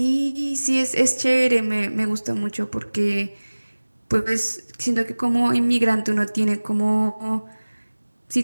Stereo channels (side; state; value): both; inverted; correlation -1.00